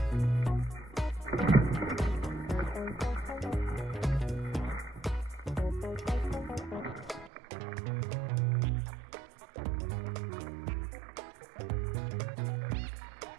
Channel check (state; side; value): drops out; left; at 7.3 s